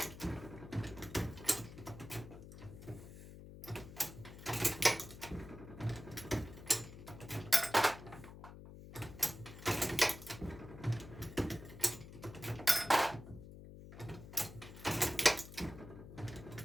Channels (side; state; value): left; noise; hum, 14 dB below the sound